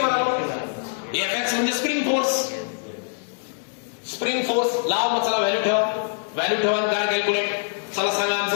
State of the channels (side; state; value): right; silent; digital silence